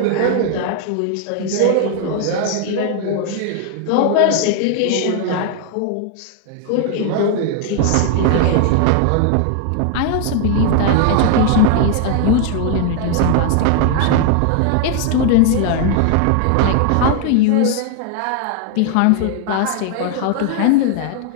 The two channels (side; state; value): both; different; correlation 0.00